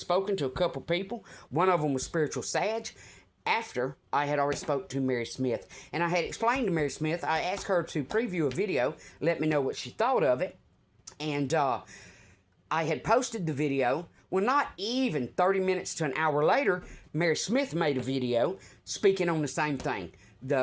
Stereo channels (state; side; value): identical; both; correlation 1.00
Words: to a couple people. One of them was Spiritual Sag. After I had already spoke to Mary Smith. And I had explained to Mary Smith, I asked her to preview a video, let me know what she thought of it. And I had posted the video. Well, not even 30 minutes to an hour later, Mary Smith made a video speaking on the same thing,